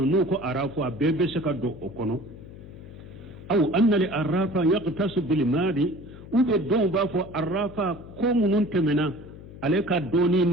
nuko arrafu a bebe saka do okono aw anna li arrafa yaqtasu bil mali ube do ba fo arrafa ko munun temena aleka doni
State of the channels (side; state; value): left; noise; hum, 16 dB below the sound